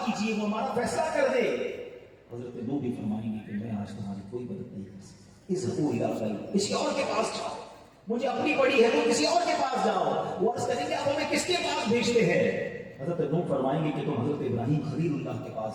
کیجیے, وہ ہمارا فیصلہ کر دے. حضرت نوح بھی فرمائیں گے کہ میں آج تمہاری کوئی مدد نہیں کر سکتا. اذهبوا الى غیری. کسی اور کے پاس جاؤ, مجھے اپنی پڑی ہے تو کسی اور کے پاس جاؤ. وہ عرض کریں گے اب ہمیں کس کے پاس بھیجتے ہیں. حضرت نوح فرمائیں گے کہ تم حضرت ابراہیم خلیل اللہ کے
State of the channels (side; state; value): both; identical; correlation 1.00